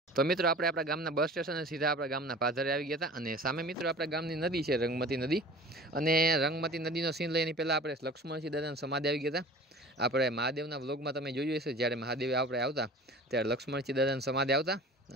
તો મિત્રો આપણે આપણા ગામના બસ સ્ટેશને સીધા આપણા ગામના પાદરે આવી ગયા હતા, અને સામે મિત્રો આપણા ગામની નદી છે રંગમતી નદી, અને રંગમતી નદીનો સીન લઈને પહેલાં આપણે લક્ષ્મણસિંહ દાદાની સમાધિ આવી ગયા હતા. આપણે મહાદેવના વ્લોગમાં તમે જોયું હશે, જ્યારે મહાદેવ આપણે આવતા ત્યારે લક્ષ્મણસિંહ દાદાની સમાધિ આવતા.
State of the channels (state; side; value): normal; both; correlation 0.42